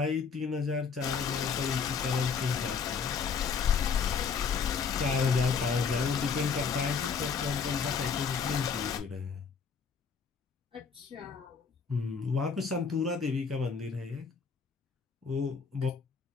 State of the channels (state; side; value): quieter; right; 5.9 dB